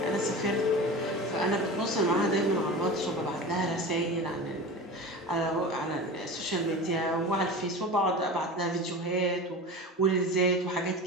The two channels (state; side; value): normal; both; correlation 0.31